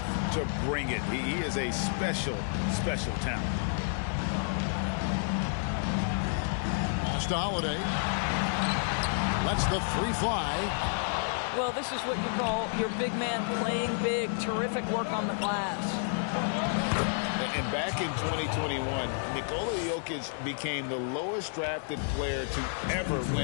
to bring it. He is a special, special talent. Pass to Holiday. Lets the 3 fly. Well, this is what you call your big man playing big. Terrific work on the glass. And back in 2021, Nikola Jokic became the lowest drafted player to ever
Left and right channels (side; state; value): right; silent; digital silence